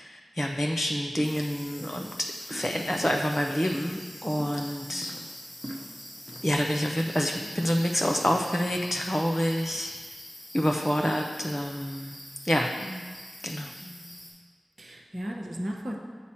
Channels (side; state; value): both; normal; correlation 0.96